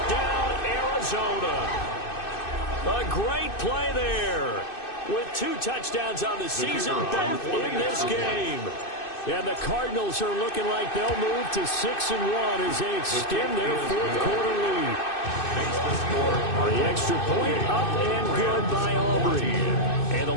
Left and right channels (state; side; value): late; right; 2.6 ms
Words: Arizona. A great play there with 2 touchdowns on the season, both in this game. And the Cardinals are looking like they'll move to 6-1 as they extend their fourth quarter lead. The extra point up and good by Aubrey. And the